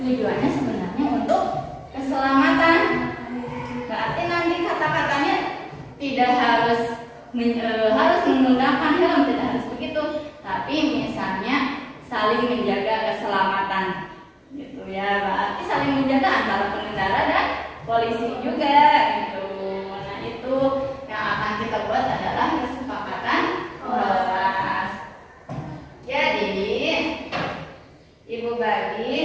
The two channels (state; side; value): identical; both; correlation 1.00